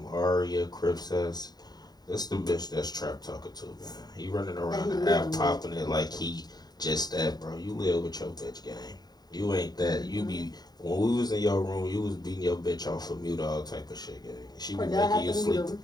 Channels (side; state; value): right; late; 0.20 ms